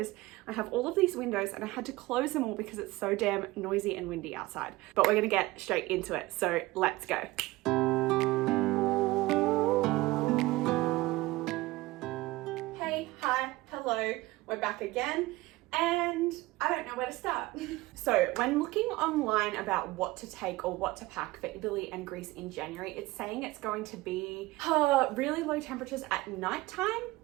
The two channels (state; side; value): quieter; left; 19.7 dB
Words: I have all of these windows and I had to close them all because it's so damn noisy and windy outside. But we're gonna get straight into it, so let's go. Hey, hi, hello, we're back again. And I don't know where to start. So when looking online about what to take or what to pack for Italy and Greece in January, it's saying it's going to be really low temperatures at nighttime.